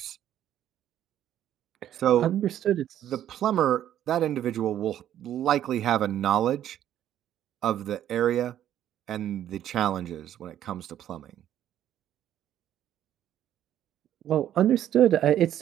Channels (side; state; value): left; quieter; 11.3 dB